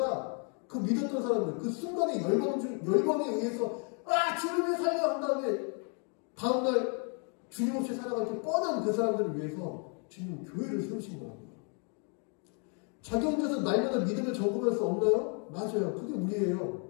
그 믿었던 사람들, 그 순간에 열광에 의해서 주님의 살려 한 다음에 다음날 주님 없이 살아갈 때 뻔한 그 사람들을 위해서 주님은 교회를 세우신 거라고요. 자기 혼자서 날마다 믿음을 점검할 수 없나요? 맞아요. 그게 우리예요.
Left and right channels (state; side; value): quieter; right; 38.8 dB